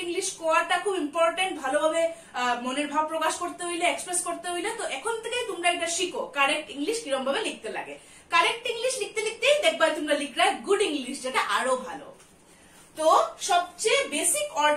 ইংলিশ কোয়াটা খুব ইম্পর্টেন্ট, ভালোভাবে মনের ভাব প্রকাশ করতে হইলে, এক্সপ্রেস করতে হইলে। তো এখন থেকে তোমরা এটা শিখো কারেক্ট ইংলিশ কিরকম ভাবে লিখতে লাগে। কারেক্ট ইংলিশ লিখতে লিখতেই দেখবা তোমরা লিখলে গুড ইংলিশ, যেটা আরো ভালো। তো সবচেয়ে বেসিক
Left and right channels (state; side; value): identical; both; correlation 1.00